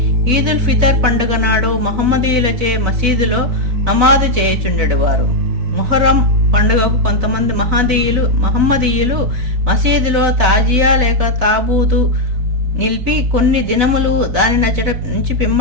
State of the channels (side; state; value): left; late; 4.0 ms